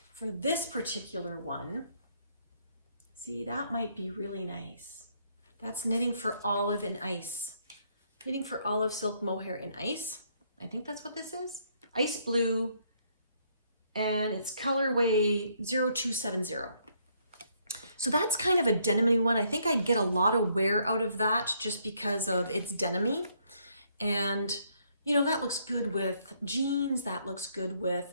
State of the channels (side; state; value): both; inverted; correlation -0.70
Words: for this particular one, see, that might be really nice. That's Knitting for Olive in Ice. Knitting for Olive Silk Mohair in Ice. I think that's what this is. Ice blue, and it's colorway 0270. So that's kind of a denim-y one. I think I'd get a lot of wear out of that just because of its denim-y. And, you know, that looks good with jeans. That looks good with